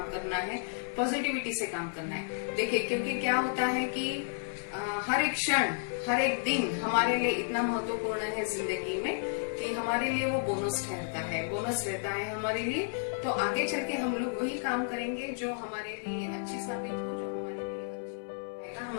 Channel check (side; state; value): right; silent; 56 dB below the other